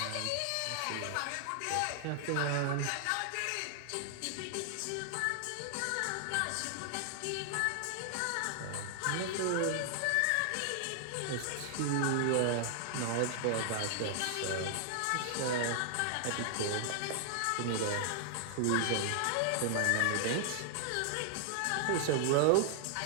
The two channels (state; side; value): different; both; correlation 0.00